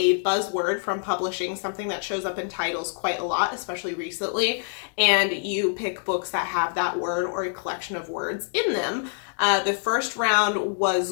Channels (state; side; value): silent; right; 61 dB below the other